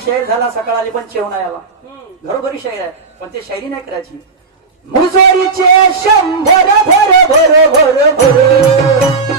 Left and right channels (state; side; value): quieter; left; 4.4 dB